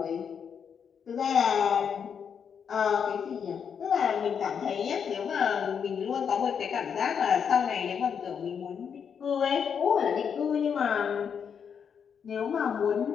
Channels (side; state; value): right; quieter; 7.2 dB